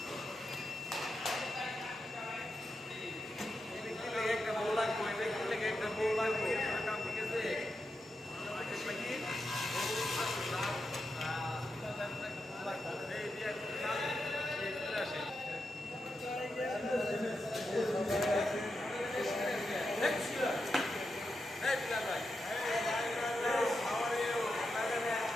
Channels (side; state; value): both; normal; correlation 0.87